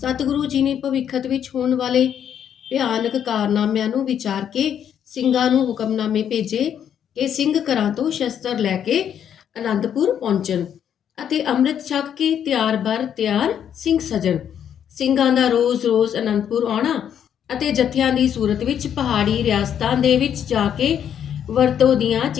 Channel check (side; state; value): right; quieter; 9.1 dB